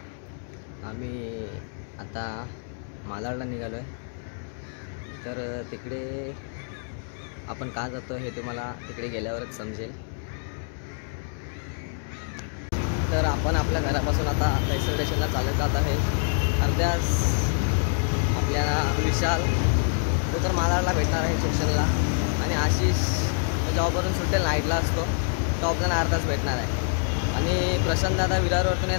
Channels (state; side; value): silent; right; 61 dB below the other